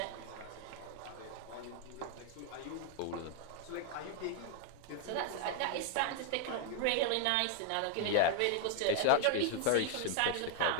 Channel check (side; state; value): both; different; correlation 0.00